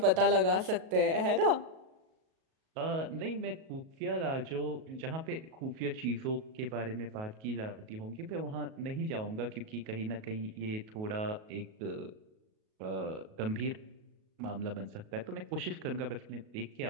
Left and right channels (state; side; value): late; left; 37 ms